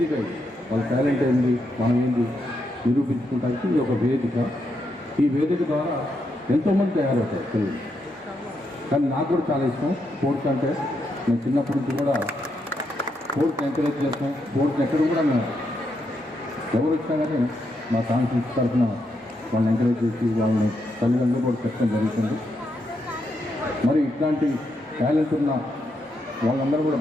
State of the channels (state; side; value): normal; both; correlation 0.81